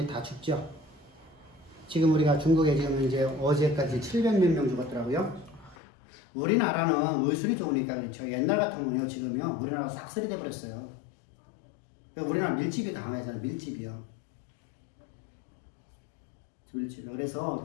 다 죽죠. 지금 우리가 중국에 지금 이제 어제까지 700몇 명 죽었더라고요. 우리나라는 의술이 좋으니까 그렇죠. 옛날 같으면요, 지금요, 우리나라 싹쓸이 돼버렸어요. 우리나라 밀집이 강하잖아요. 밀집이요. 그래서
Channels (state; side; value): drops out; right; at 5.8 s